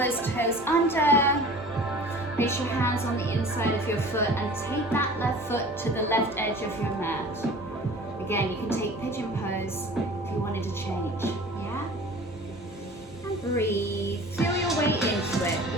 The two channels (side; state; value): both; normal; correlation 0.42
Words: toes under. Place your hands on the inside of your foot and take that left foot to the left edge of your mat. Again, you can take pigeon pose if you wanted to change. Yeah? And breathe. Feel your way into it.